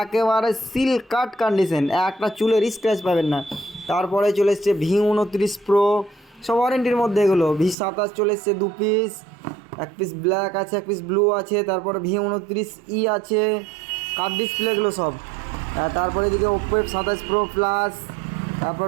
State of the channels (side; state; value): left; drops out; at 7.8 s